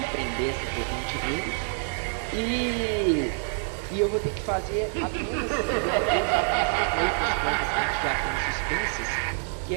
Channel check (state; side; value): silent; left; 57 dB below the other